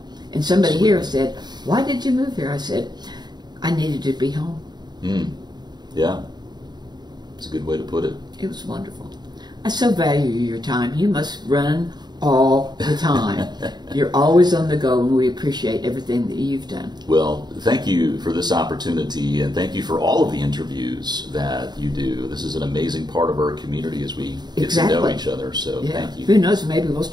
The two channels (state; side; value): late; left; 0.20 ms